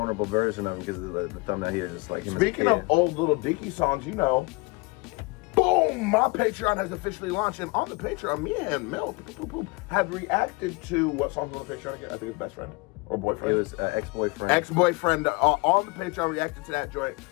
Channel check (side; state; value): right; quieter; 26.9 dB